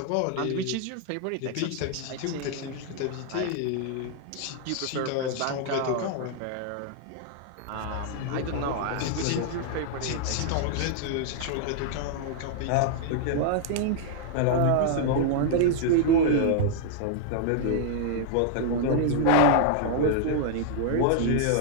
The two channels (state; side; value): different; both; correlation -0.01